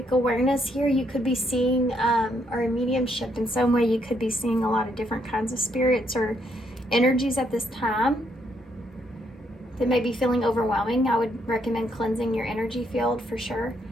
awareness here, you could be seeing, or a mediumship in some way, you could be seeing a lot of different kinds of spirits or energies at this time that may be feeling overwhelming. I would recommend cleansing your energy field for sure.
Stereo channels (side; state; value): both; normal; correlation 0.74